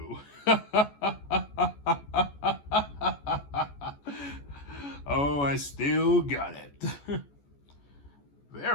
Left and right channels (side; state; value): right; late; 14 ms